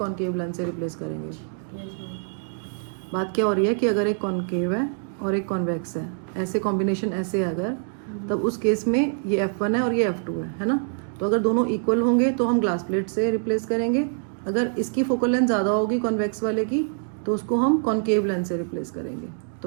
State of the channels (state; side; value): silent; left; digital silence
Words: लेंस से रिप्लेस करेंगे. बात क्या हो रही है कि अगर एक कॉनकेव है और एक कॉन्वेक्स है, ऐसे कॉम्बिनेशन ऐसे है अगर, तब उस केस में ये F1 है और ये F2 है ना। तो अगर दोनों इक्वल होंगे तो हम ग्लास प्लेट से रिप्लेस करेंगे। अगर इसकी फोकल लेंथ ज़्यादा होगी कॉन्वेक्स वाले की तो उसको हम कॉनकेव लेंथ से रिप्लेस करेंगे।